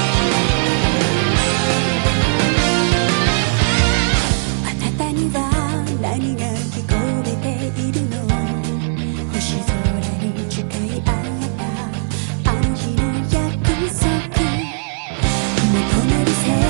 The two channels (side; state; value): left; silent; 63 dB below the other